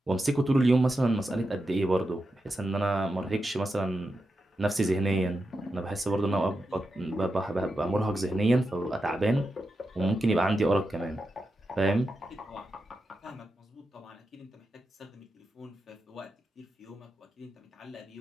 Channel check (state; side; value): normal; both; correlation 0.88